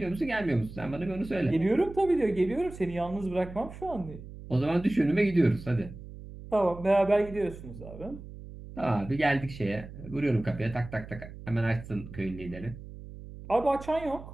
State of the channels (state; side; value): noise; right; hum, 14 dB below the sound